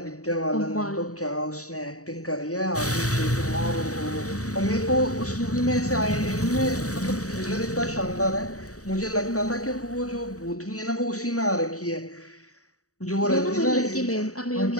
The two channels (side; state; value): right; late; 0.66 ms